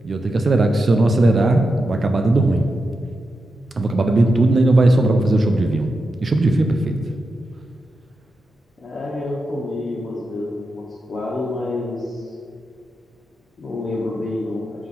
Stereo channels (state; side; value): normal; both; correlation 0.89